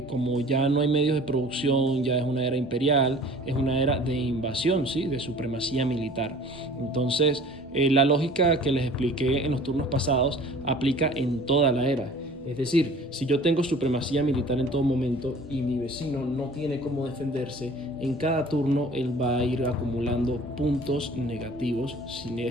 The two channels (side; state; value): both; normal; correlation 0.47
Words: como ya no hay medios de producción, ya es una era imperial, es una era de invasión, ¿sí? De supremacía militar. Entonces la lógica que les expliqué en los turnos pasados aplica en toda la era. Es decir, si yo tengo supremacía militar en todo momento y mi vecino no tiene cómo defenderse, en cada turno él va a ir acumulando puntos negativos si